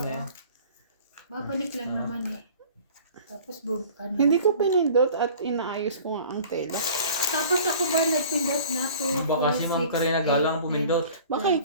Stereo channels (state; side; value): inverted; both; correlation -0.46